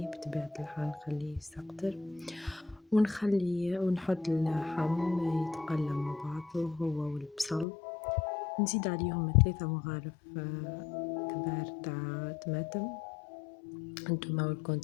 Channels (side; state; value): right; drops out; at 7.7 s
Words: بطبيعة الحال نخليه يسقطر ونحط اللحم يتقلى مع بعضه هو والبصل. نزيد عليهم 3 مغارف كبار تاع طماطم. انتوما